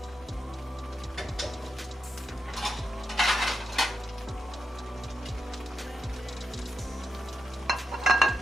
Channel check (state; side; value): normal; both; correlation 0.87